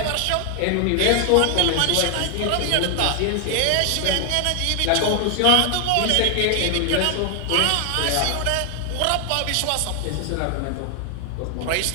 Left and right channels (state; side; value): different; both; correlation 0.00